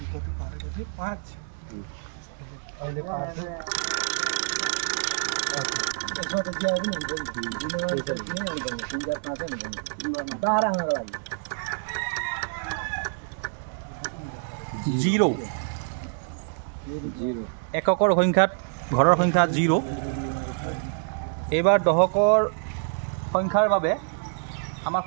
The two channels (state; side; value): silent; left; 60 dB below the other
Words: জিৰ' এককৰ সংখ্যাত ঘৰৰ সংখ্যা 0। এইবাৰ দহকৰ সংখ্যাৰ বাবে আমাৰ